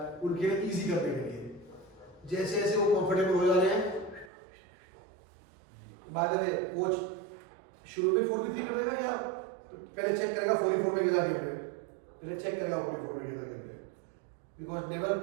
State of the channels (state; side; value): drops out; left; at 4.3 s